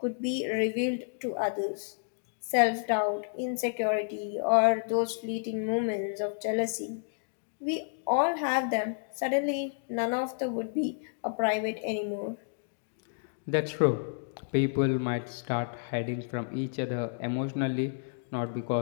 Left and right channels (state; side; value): silent; right; digital silence